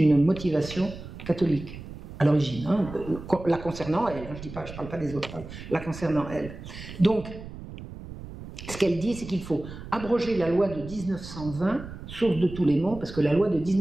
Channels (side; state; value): right; noise; rumble, 13 dB below the sound